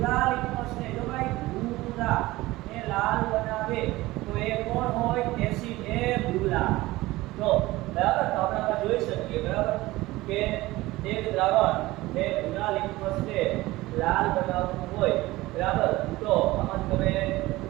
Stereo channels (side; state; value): left; quieter; 18.8 dB